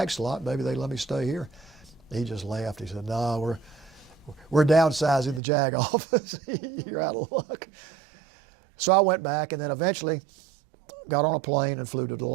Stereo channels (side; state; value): left; drops out; at 5.4 s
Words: slot, maybe they'd let me stay here. He just laughed. He said, no, we're downsizing the JAG office. You're out of luck. So I went back, and then eventually got on a plane and flew to the